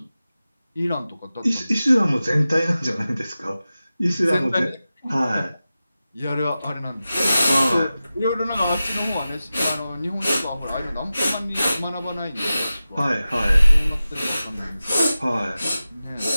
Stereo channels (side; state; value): both; inverted; correlation -0.94